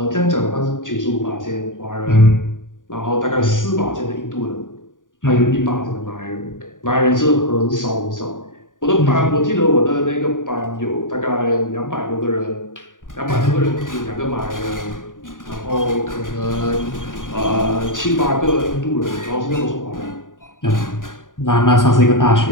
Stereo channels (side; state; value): right; late; 0.88 ms